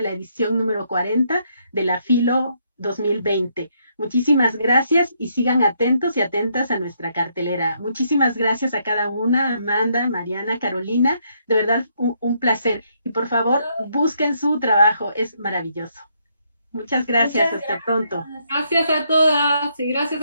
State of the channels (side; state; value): both; inverted; correlation -0.74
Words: la edición número 40 de la Filo 2020. Muchísimas gracias y sigan atentos y atentas a nuestra cartelera. Muchísimas gracias a cada una, Amanda, Mariana, Carolina. De verdad, un placer. Y por favor, busquen su trabajo, es maravilloso. Muchas gracias, Muchas hasta pronto. gracias. Gracias a todas y gracias